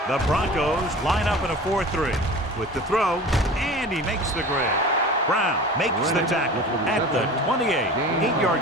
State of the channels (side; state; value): both; normal; correlation 0.38